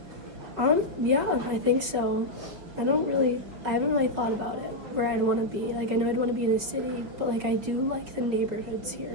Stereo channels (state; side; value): late; left; 5.5 ms